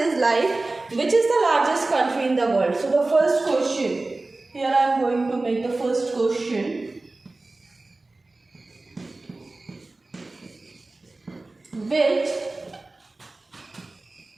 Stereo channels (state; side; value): quieter; left; 3.2 dB